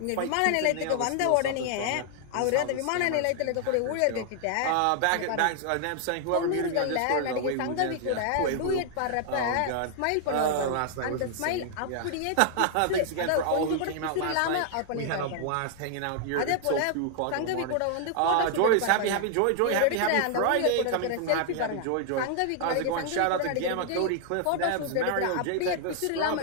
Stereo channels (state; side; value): different; both; correlation 0.00